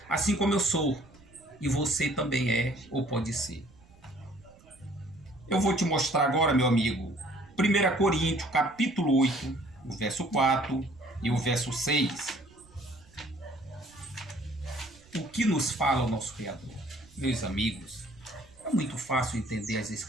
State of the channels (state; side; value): noise; right; rumble, 27 dB below the sound